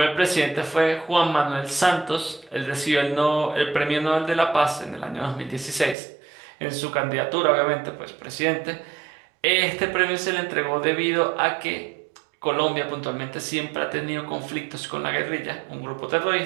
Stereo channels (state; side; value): drops out; left; at 6.0 s